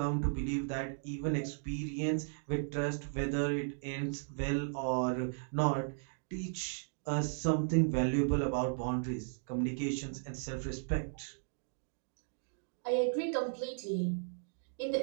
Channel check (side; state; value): left; silent; digital silence